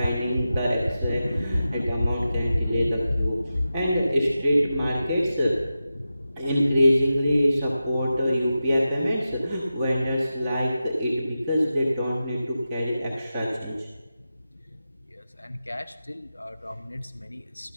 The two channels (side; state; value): both; inverted; correlation -0.92